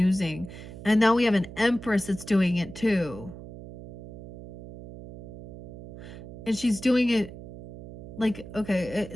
And now we have an empress that's doing it too. And she's doing it like, okay,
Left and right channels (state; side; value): noise; right; hum, 14 dB below the sound